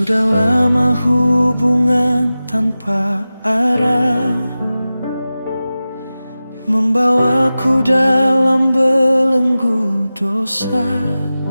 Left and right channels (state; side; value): inverted; both; correlation -0.95